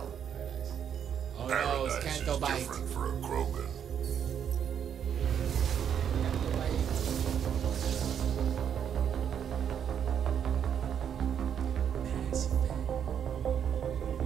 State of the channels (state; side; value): quieter; left; 8.5 dB